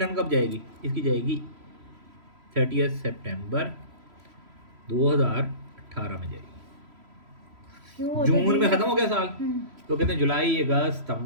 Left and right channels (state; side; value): late; left; 3.0 ms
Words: कब जाएगी? इसकी जाएगी 30 सितंबर 2018 में जाएगी। क्यों जून में ख़त्म हो गया साल, हम्म। तो कहते हैं जुलाई अगस्त